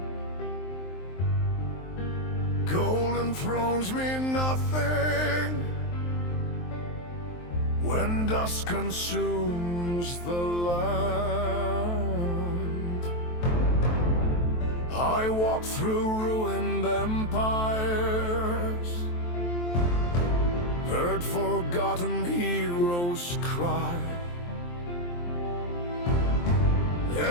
Golden thrones mean nothing when dust consumes the land. I walk through ruined empires, heard forgotten heroes cry.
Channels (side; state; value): right; late; 23 ms